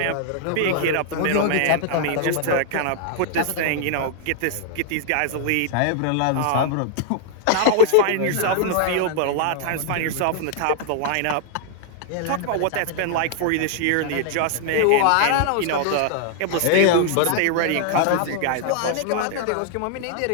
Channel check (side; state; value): both; different; correlation -0.01